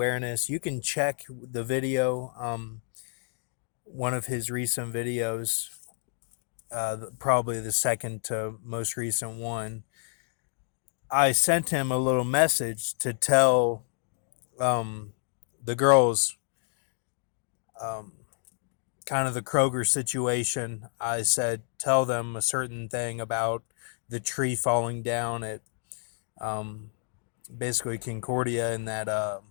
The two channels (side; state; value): right; silent; 56 dB below the other